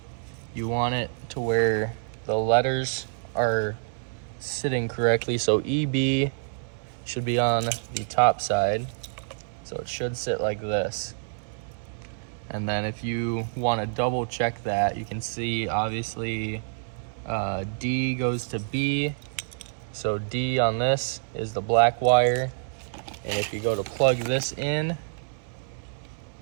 you want it to where the letters are sitting correctly. So EB should be on the top side. So it should sit like this. And then if you want to double check that, you can see obviously D goes to B. So D on this is the black wire. And if you go to plug this in,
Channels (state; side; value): silent; left; 60 dB below the other